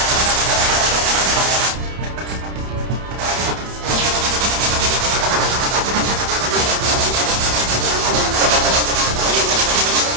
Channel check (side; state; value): left; late; 31 ms